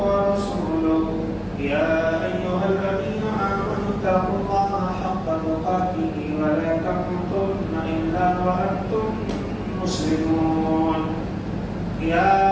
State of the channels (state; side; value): identical; both; correlation 1.00